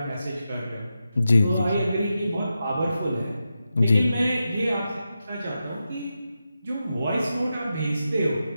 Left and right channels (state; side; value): inverted; both; correlation -0.89